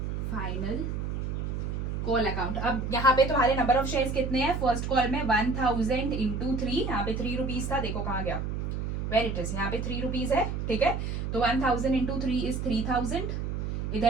final call account. अब यहाँ पे तुम्हारे number of shares कितने हैं, first call में 1000 into 3, यहाँ पे 3 rupees था, देखो कहाँ गया, वेर इट इज, यहाँ पे 3 रुपीज है, ठीक है। तो 1000 इंटू 3 इज 3000,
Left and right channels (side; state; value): right; noise; hum, 3 dB below the sound